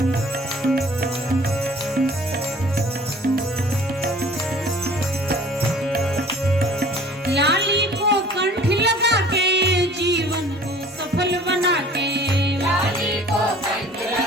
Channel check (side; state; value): both; normal; correlation 0.50